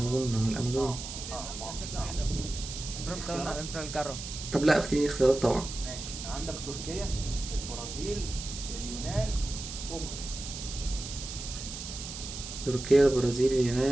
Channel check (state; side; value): noise; right; hiss, 9 dB below the sound